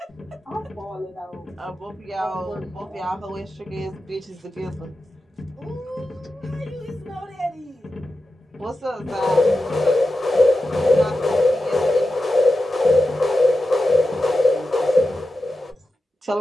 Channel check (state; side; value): normal; both; correlation 0.91